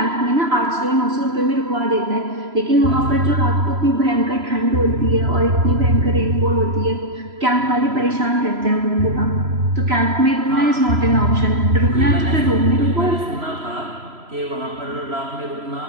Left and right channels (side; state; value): left; late; 3.0 ms